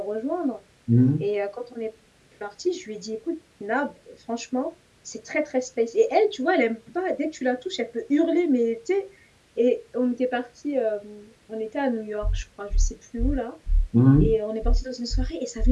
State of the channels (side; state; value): both; identical; correlation 1.00